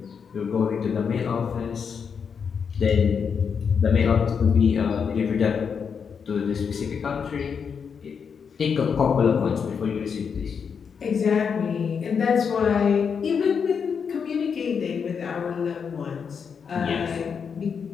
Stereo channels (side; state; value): right; quieter; 6.5 dB